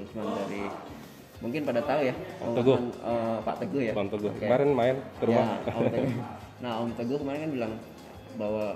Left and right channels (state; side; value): identical; both; correlation 1.00